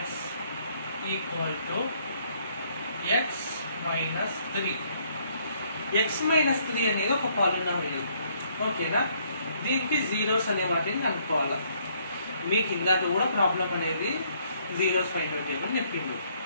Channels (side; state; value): both; inverted; correlation -0.67